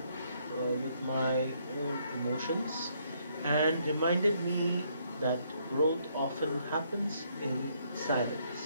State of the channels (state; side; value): inverted; both; correlation -0.71